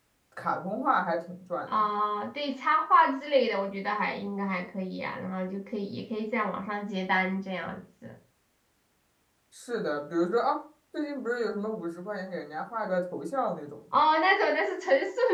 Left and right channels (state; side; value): identical; both; correlation 1.00